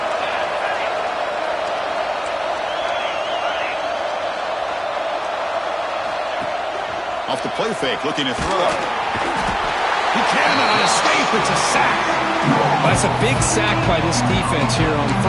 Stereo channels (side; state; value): both; identical; correlation 1.00